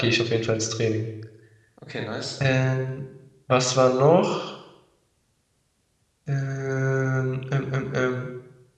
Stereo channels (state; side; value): identical; both; correlation 1.00